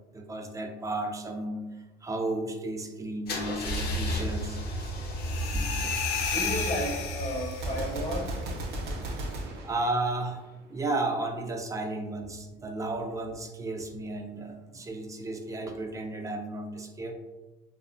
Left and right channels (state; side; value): normal; both; correlation 0.43